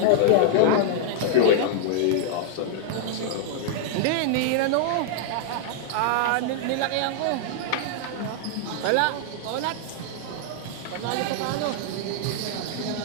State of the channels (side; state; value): both; different; correlation -0.01